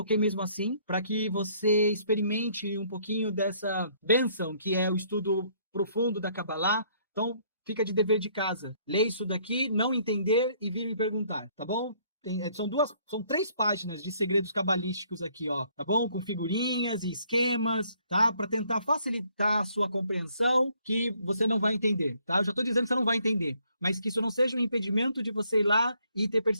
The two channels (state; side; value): inverted; both; correlation -0.65